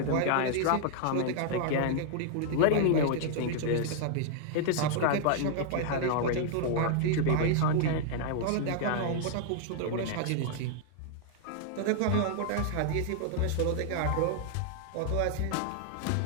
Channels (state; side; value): different; both; correlation -0.01